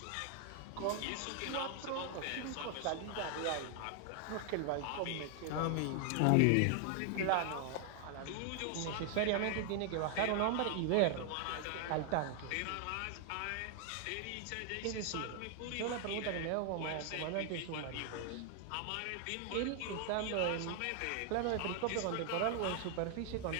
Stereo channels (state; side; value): different; both; correlation 0.00